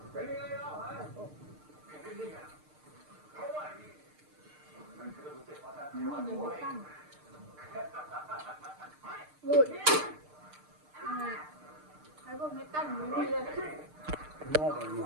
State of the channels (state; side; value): late; left; 6.6 ms